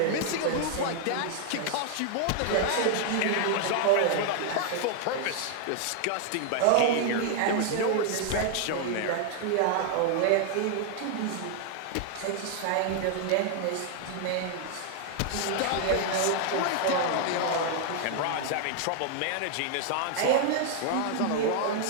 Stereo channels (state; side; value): different; both; correlation 0.00